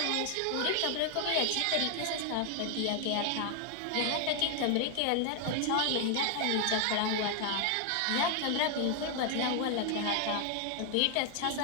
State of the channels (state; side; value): different; both; correlation 0.00